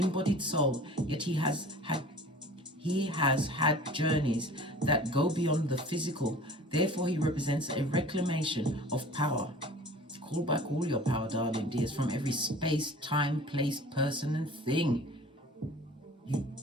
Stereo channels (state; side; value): normal; both; correlation 0.44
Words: soul, yet he has had journeys that go beyond the physical. Therefore, he represents a reclamation of power. Call back all your power, darling dears, from every space, time, place, person, and thing. You